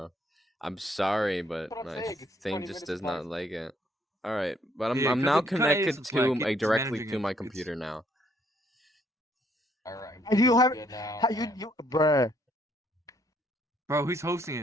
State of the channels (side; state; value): both; normal; correlation 0.68